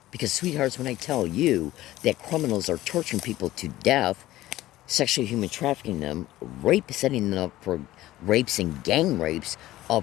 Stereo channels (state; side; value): quieter; right; 15.8 dB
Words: Because, sweethearts, when I tell you that criminals are torturing people to death, sexually human trafficking them, setting them up for rapes and gang rapes